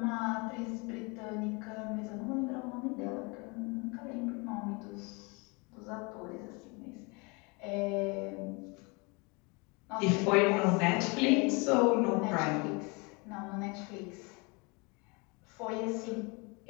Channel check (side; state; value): right; quieter; 29.4 dB